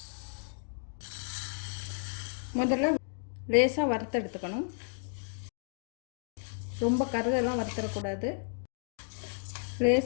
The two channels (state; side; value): silent; right; digital silence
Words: முதல்ல லேசாக வறுத்து எடுத்துக்கணும். ரொம்ப கருதெல்லாம் வறுத்துடக்கூடாது.